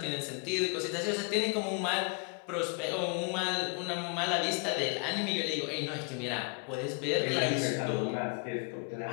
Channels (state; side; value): quieter; right; 37.0 dB